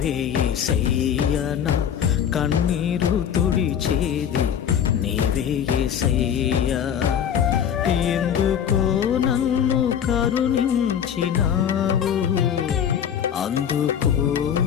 యేసయ్యా నా కన్నీరు తుడిచేది నీవే యేసయ్యా ఎందుకో నన్ను కరుణించినావు అందుకో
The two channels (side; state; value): right; quieter; 8.8 dB